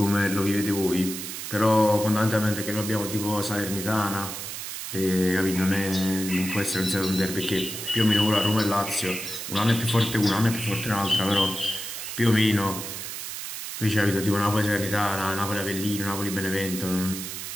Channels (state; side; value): noise; right; hiss, 7 dB below the sound